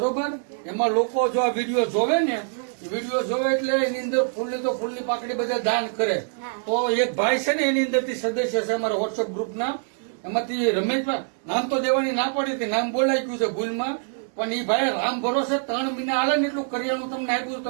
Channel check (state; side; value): silent; left; digital silence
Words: એમાં લોકો જો આ વિડીયો જોવે ને, વિડીયો જોવે એટલે એની અંદર ફૂલની તો ફૂલની પાકડી બધા દાન કરે. તો એક ભાઈ છે ને એની અંદર થી સદસ્ય છે અમારા વોટ્સઅપ ગ્રુપના. એમાંથી રમેશભાઈ, નામ તો દેવાની ના પડી હતી, નામ બોલાઈ ગયું છે ભૂલમાં, પણ એ ભાઈ રામ ભરોસે 3 મહિના હાલે ને એટલું કરિયાણું તમને આપ્યું.